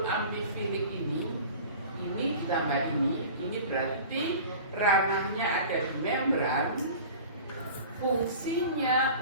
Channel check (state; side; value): inverted; both; correlation -0.39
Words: amfifilik ini ditambah ini berarti ranahnya ada di membran.